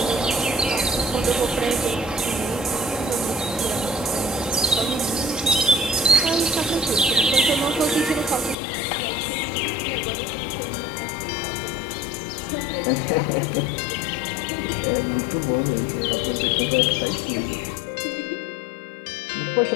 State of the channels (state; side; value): drops out; right; at 8.6 s